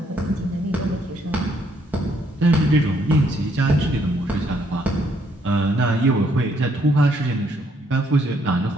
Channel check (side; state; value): both; normal; correlation 0.70